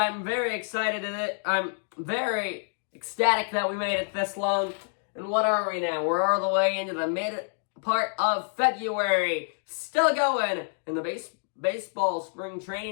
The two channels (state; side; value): silent; right; 59 dB below the other